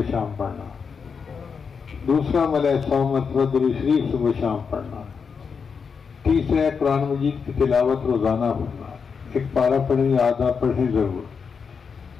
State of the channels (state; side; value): quieter; right; 5.9 dB